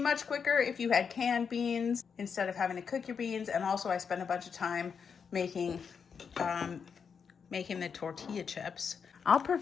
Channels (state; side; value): quieter; right; 6.4 dB